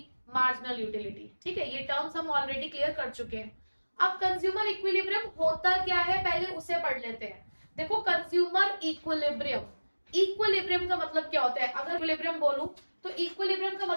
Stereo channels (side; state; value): both; inverted; correlation -1.00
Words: marginal utility. ठीक है, ये टर्म्स हम ऑलरेडी क्लियर कर चुके हैं। अब कंज्यूमर इक्विलिब्रियम होता क्या है पहले उसे पढ़ लेते हैं। देखो, कंज्यूमर इक्विलिब्रियम, इक्विलिब्रियम का मतलब क्या होता है? अगर इक्विलिब्रियम बोलूं तो इक्विलिब्रियम का